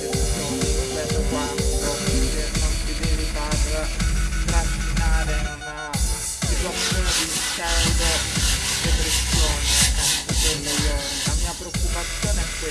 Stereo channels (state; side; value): identical; both; correlation 1.00